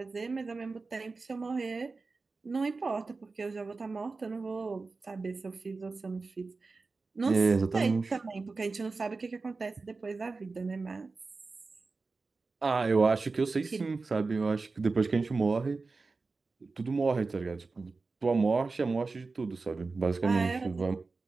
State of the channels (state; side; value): quieter; left; 4.0 dB